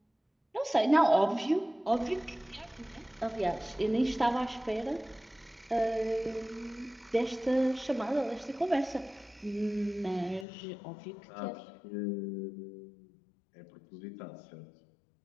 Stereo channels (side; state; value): right; drops out; at 10.5 s